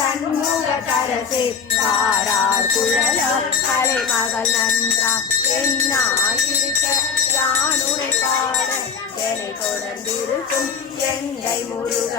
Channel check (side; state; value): right; quieter; 6.0 dB